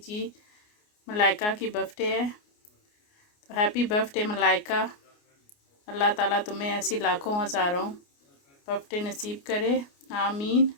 मलाइका की बर्थडे है, तो हैप्पी बर्थडे मलाइका। अल्लाह ताला तुम्हें ऐसी लाखों हज़ारों बर्थडे नसीब करे, आमीन।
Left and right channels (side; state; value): right; late; 29 ms